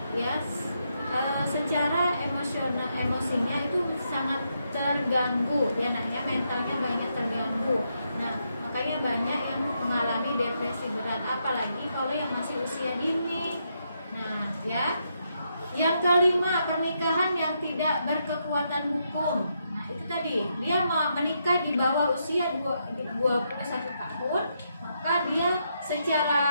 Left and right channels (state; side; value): inverted; both; correlation -0.80